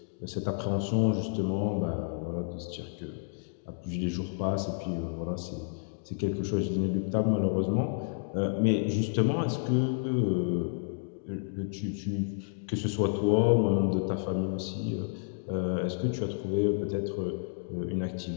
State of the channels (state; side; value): silent; right; digital silence